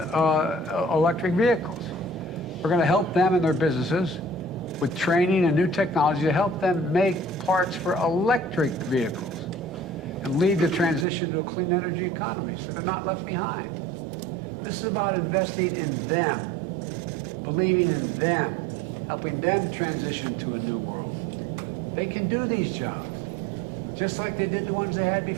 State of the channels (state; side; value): drops out; left; at 11.1 s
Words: electric vehicles. We're going to help them and their businesses with training and new technology to help them make parts for electric vehicles and lead the transition to a clean energy economy so they're not left behind. This is about investing in them, believing in them, helping them transition to a new world. They can do these jobs, just like they did the ones they had